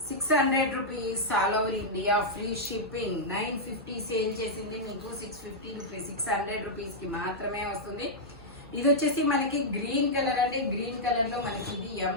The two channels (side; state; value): right; noise; hum, 22 dB below the sound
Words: 600 rupees all over India, free shipping. 950 sale చేసింది మీకు 650 రూపీస్, 600 రూపీస్ కి మాత్రమే వస్తుంది. ఇది వచ్చేసి మనకి గ్రీన్ కలర్ అండి. గ్రీన్ కలర్ లో మనకి ఇది